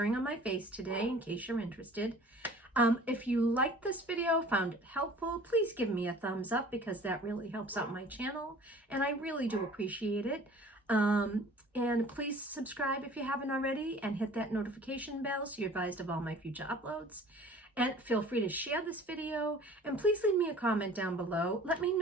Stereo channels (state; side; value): normal; both; correlation 0.47